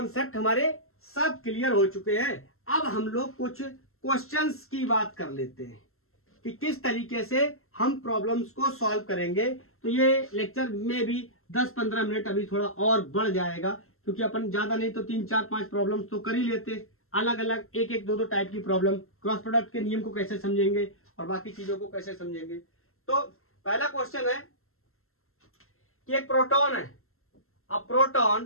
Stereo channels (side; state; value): right; late; 0.62 ms